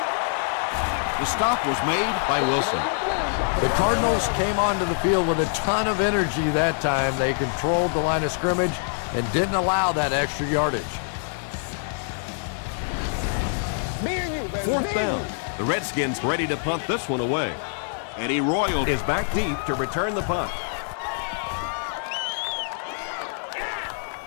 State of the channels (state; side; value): silent; right; digital silence